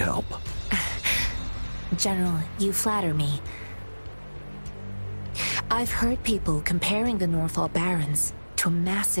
General, you flatter me. I've heard people comparing the Norfall Barrens to a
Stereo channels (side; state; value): both; inverted; correlation -1.00